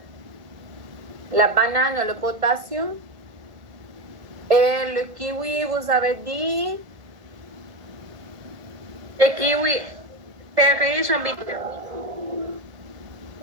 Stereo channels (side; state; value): left; late; 1.7 ms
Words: La banane, le potassium. Et le kiwi, vous avez dit? Le kiwi est riche en vitamines.